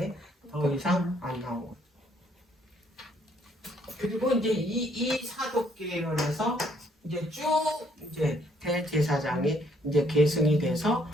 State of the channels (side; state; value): both; normal; correlation 0.67